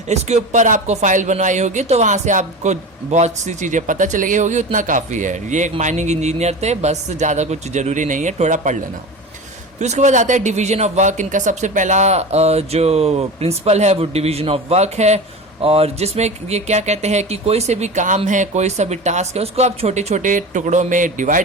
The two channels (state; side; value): normal; both; correlation 0.30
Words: इसके ऊपर आपको फाइल बनवाई होगी तो वहाँ से आपको बहुत सी चीज़ें पता चल गई होगी, उतना काफ़ी है। ये एक माइनिंग इंजीनियर थे, बस ज़्यादा कुछ ज़रूरी नहीं है, थोड़ा पढ़ लेना। फिर उसके बाद आता है डिवीजन ऑफ वर्क। इनका सबसे पहला जो प्रिंसिपल है वो डिवीजन ऑफ वर्क है, और जिसमें ये क्या कहते हैं कि कोई से भी काम है, कोई सा भी टास्क है, उसको आप छोटे छोटे टुकड़ों में